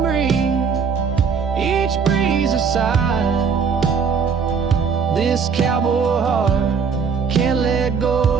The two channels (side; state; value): left; quieter; 6.0 dB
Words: each breeze a sigh. This cowboy heart can't let go